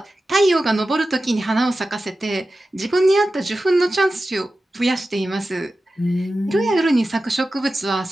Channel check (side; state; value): both; normal; correlation 0.94